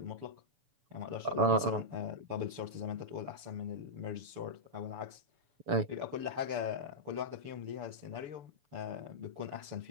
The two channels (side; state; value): left; late; 6.9 ms